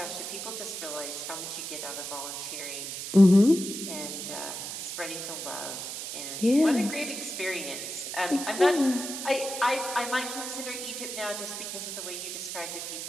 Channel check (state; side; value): noise; right; hiss, 6 dB below the sound